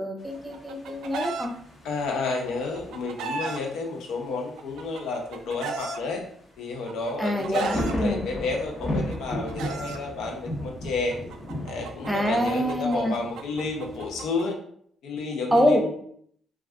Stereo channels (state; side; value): normal; both; correlation 0.74